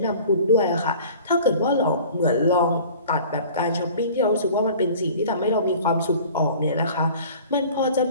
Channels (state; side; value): inverted; both; correlation -0.45